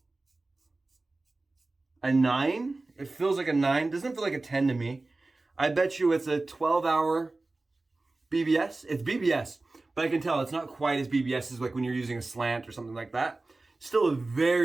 a 9. It feels like a 9. Doesn't feel like a 10 to me. I bet you it's a 12-hour BBS. It's BBS, but I can tell it's not quite as BBS as like when you're using a slant or something like that. Still a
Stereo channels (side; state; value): left; quieter; 3.2 dB